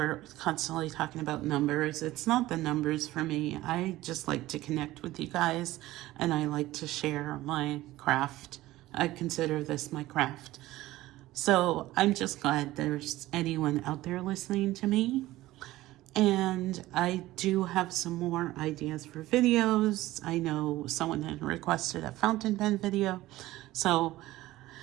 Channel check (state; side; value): quieter; left; 16.8 dB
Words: constantly talking about numbers. It's not the numbers for me. I just like to connect with you guys, and I like to share my craft. I consider this my craft. So I'm just glad there's anyone out there listening to me. And I do have some more ideas for videos. I know someone had requested a fountain pen video, so